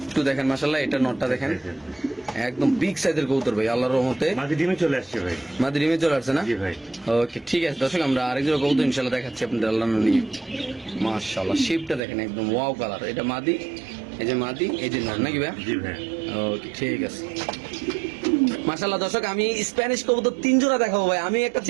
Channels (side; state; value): left; drops out; at 12.0 s